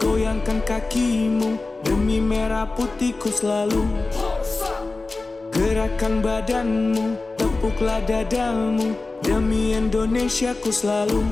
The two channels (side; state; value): right; quieter; 3.5 dB